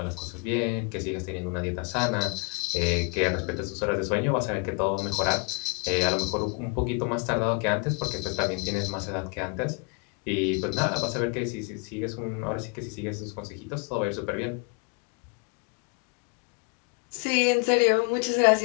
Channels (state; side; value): quieter; right; 31.4 dB